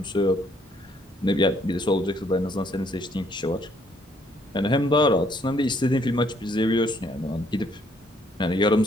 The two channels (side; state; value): both; normal; correlation 0.67